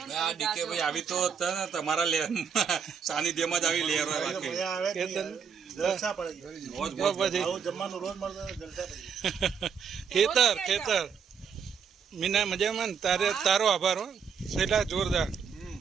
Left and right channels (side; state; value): left; quieter; 6.8 dB